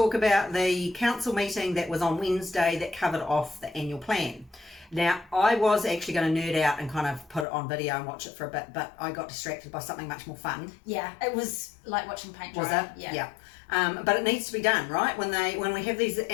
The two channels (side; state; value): right; drops out; at 7.5 s